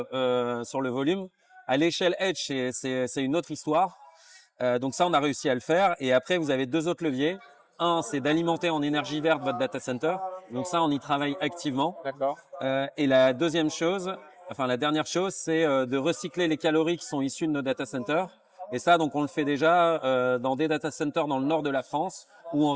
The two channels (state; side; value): identical; both; correlation 1.00